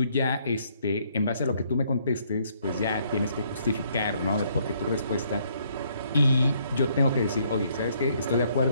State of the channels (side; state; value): both; inverted; correlation -0.68